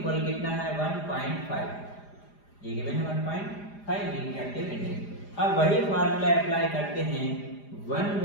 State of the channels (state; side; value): late; right; 4.9 ms